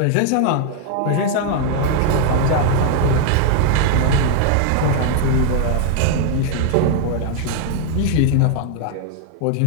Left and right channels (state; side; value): different; both; correlation 0.00